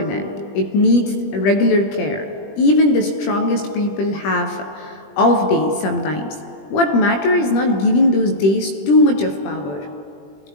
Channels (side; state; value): right; late; 20 ms